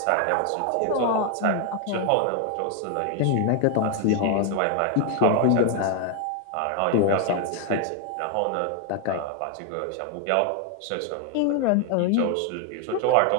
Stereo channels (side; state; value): both; different; correlation 0.01